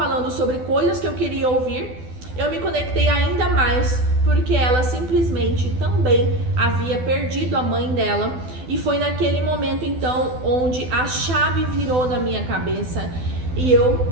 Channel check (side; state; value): left; late; 12 ms